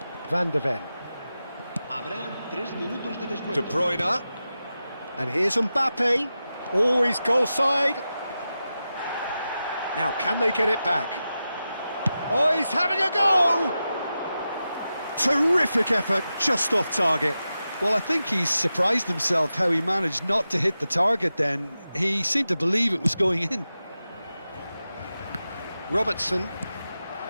Van de Ven. De Bruyne. And here's Mbappe. Always goal side. Now, can they get it back? Oh, he's having a go! Terrific effort, just off target. Well, I think he's surprised himself how he managed not to hit the target then. He seemed to believe it was going in. Robertson.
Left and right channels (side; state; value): both; inverted; correlation -0.92